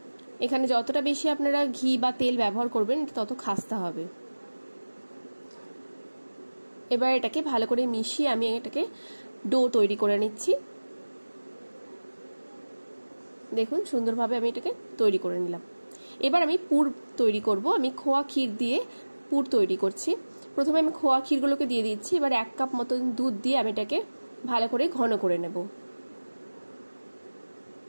এখানে যতটা বেশি আপনারা ঘি বা তেল ব্যবহার করবেন তত খাস্তা হবে। এবার এটাকে ভালো করে মিশিয়ে আমি এটাকে ডো তৈরি করে নিচ্ছি। দেখুন সুন্দরভাবে আমি এটাকে তৈরি করে নিলাম। এবার আমি পুর তৈরি করব। আমি খোয়া ক্ষীর দিয়ে পুর তৈরি করছি। প্রথমে আমি খোয়া ক্ষীরগুলোকে দিয়ে দিচ্ছি। এবার 1 কাপ মতন দুধ দিয়ে আমি এটাকে ভালো করে ঘন করে নেব।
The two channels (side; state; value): both; inverted; correlation -1.00